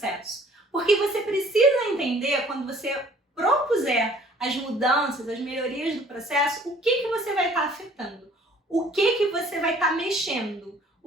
Porque você precisa entender, quando você propuser as mudanças, as melhorias do processo, o que você vai estar afetando, o que você vai estar mexendo,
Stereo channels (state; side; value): normal; both; correlation 0.56